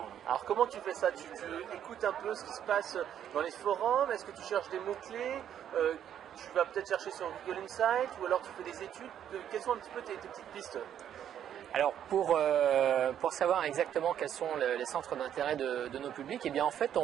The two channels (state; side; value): quieter; left; 9.9 dB